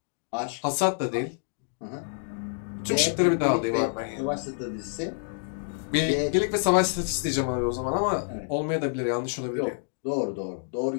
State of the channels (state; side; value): silent; right; digital silence